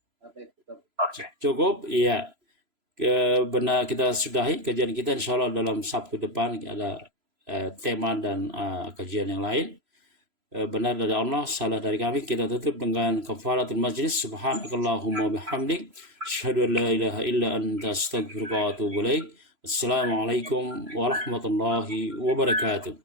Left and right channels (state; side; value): late; left; 3.0 ms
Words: Cukup, iya. Benar, kita sudahi kajian kita, insya Allah dalam Sabtu depan ada tema dan kajian yang lain. Benar dari Allah, salah dari kami. Kita tutup dengan kafaratul majlis. Subhanakallahumma bihamdik, asyhadu an la ilaha illa anta, astaghfiruka wa atubu ilaik. Assalamualaikum warahmatullahi wabarakatuh.